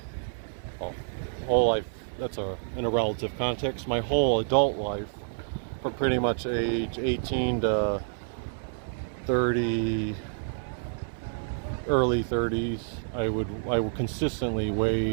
that's in a relative context, my whole adult life, from pretty much age 18 to 30, early 30s, I would consistently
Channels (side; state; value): left; silent; 59 dB below the other